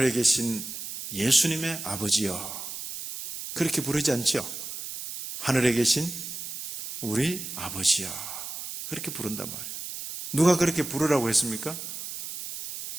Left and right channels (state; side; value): noise; right; hiss, 6 dB below the sound